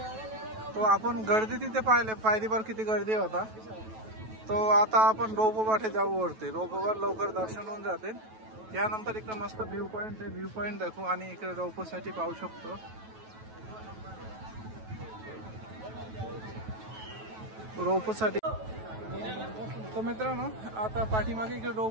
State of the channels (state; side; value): late; left; 9.2 ms